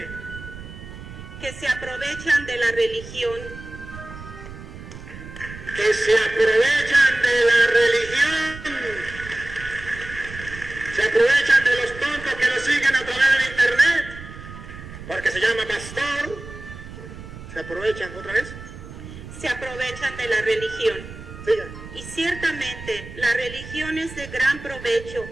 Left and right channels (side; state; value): right; noise; rumble, 14 dB below the sound